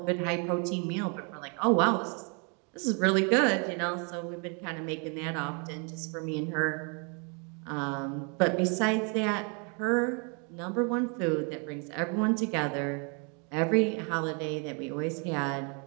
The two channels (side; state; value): left; quieter; 35.9 dB